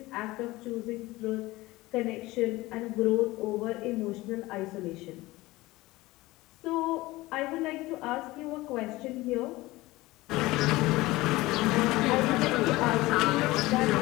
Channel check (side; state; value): right; quieter; 19.5 dB